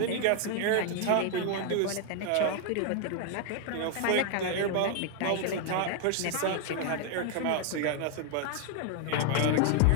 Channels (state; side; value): different; both; correlation 0.00